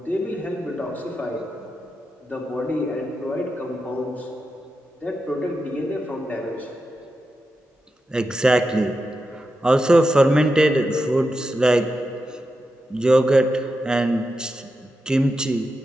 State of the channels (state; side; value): normal; both; correlation 0.88